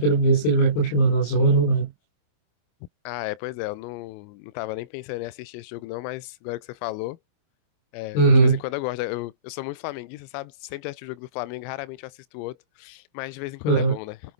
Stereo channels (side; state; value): right; late; 27 ms